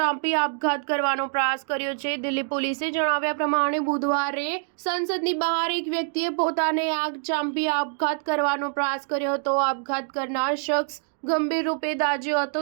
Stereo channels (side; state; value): left; silent; 62 dB below the other